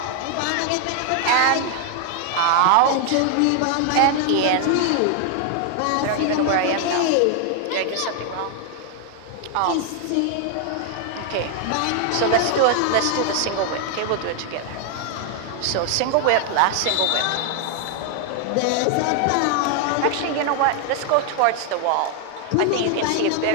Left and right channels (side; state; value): both; different; correlation 0.00